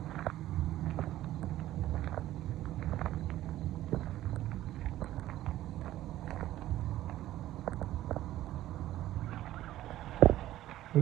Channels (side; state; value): left; quieter; 14.3 dB